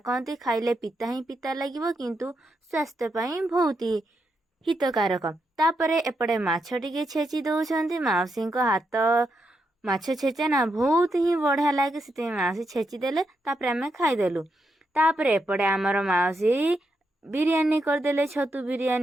कहती खाइले पिता ही पिता लगिवो किंतु स्वास्थ्य पई बहुत ही हितकारक। तापरे एपटे माछ टिके छेची दउछंती मौसी को हाथ माछ छेचा ना बहुत ही बढ़िया लगे से मौसी छेची देले तापरे आमे खाइदेलु। तापरे एपटे आमर मौसी बिरियानी करदेले छतु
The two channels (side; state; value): both; normal; correlation 0.82